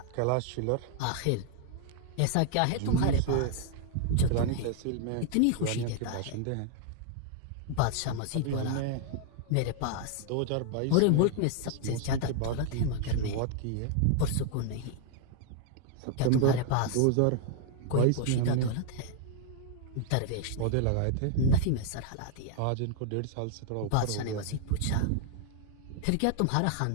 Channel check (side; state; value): both; different; correlation -0.01